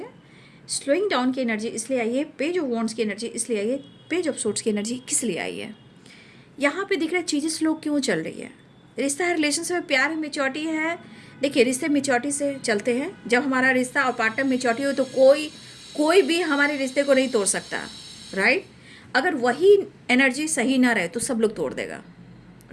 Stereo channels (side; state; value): both; identical; correlation 1.00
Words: स्लोइंग डाउन की एनर्जी इसलिए आई है, पेज ऑफ वॉन्ड्स की एनर्जी इसलिए आई है, पेज ऑफ सोर्ट्स की एनर्जी किस लिए आई है। यहाँ पे दिख रहा है चीज़ें स्लो क्यों चल रही है। रिश्ता है, रिलेशनशिप में प्यार है, मेच्योरिटी है। देखिए, रिश्ते मेच्योरिटी से चलते हैं। जब हमारा रिश्ता और पार्टनर मेच्योरिटी हो तो कोई भी हमारे रिश्ते को नहीं तोड़ सकता, राइट। अगर वही एनर्जी सही ना रहे तो सब लोग तोड़ देगा,